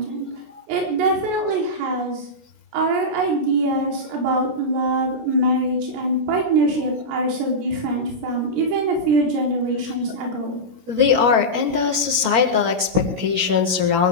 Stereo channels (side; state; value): left; late; 17 ms